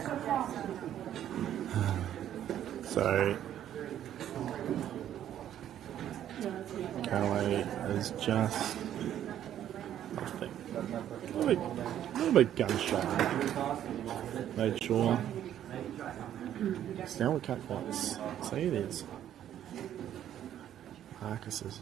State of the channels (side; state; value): left; quieter; 11.0 dB